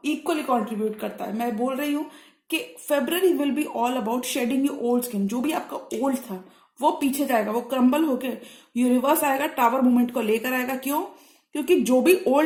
कंट्रीब्यूट करता है। मैं बोल रही हूं कि February will be all about shedding your old skin. जो भी आपका ओल्ड था वो पीछे जाएगा, वो क्रम्बल होके यूनिवर्स आएगा, टावर मूवमेंट को लेकर आएगा। क्यों? क्योंकि जो भी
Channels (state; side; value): identical; both; correlation 1.00